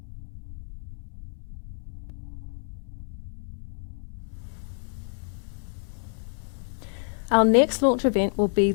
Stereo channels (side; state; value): right; silent; 58 dB below the other